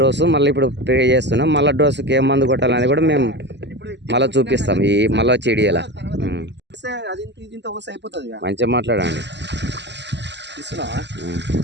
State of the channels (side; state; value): left; late; 0.51 ms